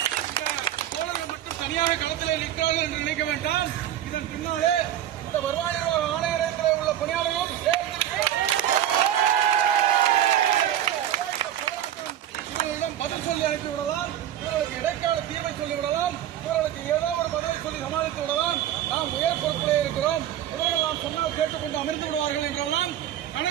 தோழர்கள் மட்டும் தனியாக களத்திலே நிற்கிறார்கள் என்று நினைக்க வேண்டாம். இதன் பின்னாலே இந்த வருவாய் நிர்வாக ஆணையரகத்திலே உள்ள பணியாளர்களும் இவர்களிடம் பதில் சொல்லி அனுப்பிவிடலாம், இவர்களுக்கு இடைக்கால தீர்வை சொல்லிவிடலாம், இவர்களுக்கு ஏதோ ஒரு பதவி சொல்லி சமாளித்து விடலாம். நாம் உயர் பொறுப்பிலே இருக்கிறோம், இவர்கள் நாம் சொன்னால் கேட்டுக்கொண்டு அமர்ந்து விடுவார்கள் என்றெல்லாம்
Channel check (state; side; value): quieter; left; 11.4 dB